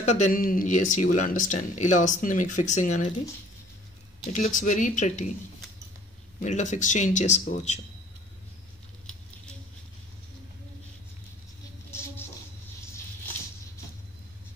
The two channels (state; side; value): normal; both; correlation 0.54